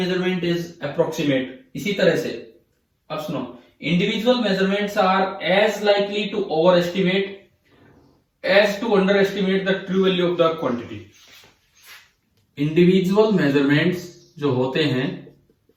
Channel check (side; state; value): both; identical; correlation 1.00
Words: इज अप्रोक्सीमेट। इसी तरह से अब सुनो, individual measurements are as likely to overestimate as to underestimate the true value of the quantity. Individual measurements जो होते हैं,